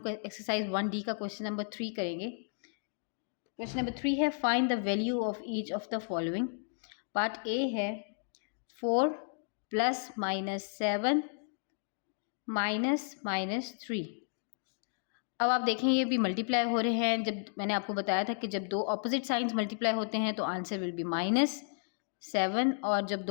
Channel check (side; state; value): right; silent; digital silence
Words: एक्सरसाइज 1D का क्वेश्चन नंबर 3 करेंगे। क्वेश्चन नंबर 3 है find the value of each of the following. Part A है 4 प्लस माइनस 7 माइनस 3। अब आप देखें ये भी मल्टीप्लाई हो रहे हैं। जब मैंने आपको बताया था कि जब दो ऑपोजिट साइंस मल्टीप्लाई होते हैं तो आंसर विल बी -7, और जब